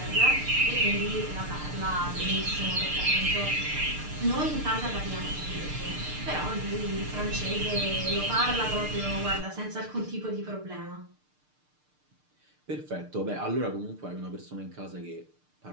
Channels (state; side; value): late; left; 6.6 ms